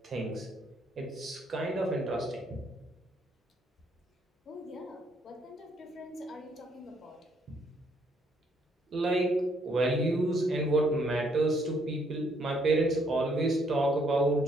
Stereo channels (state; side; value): normal; both; correlation 0.70